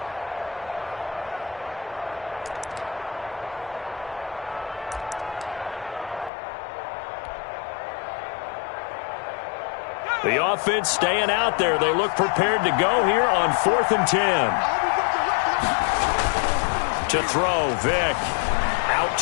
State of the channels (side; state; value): right; drops out; at 6.3 s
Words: The offense staying out there. They look prepared to go here on 4th and 10. To throw, Vick. Out